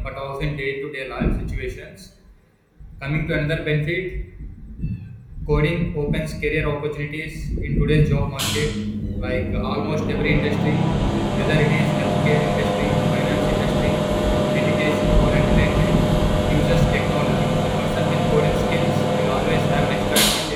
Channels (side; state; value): both; identical; correlation 1.00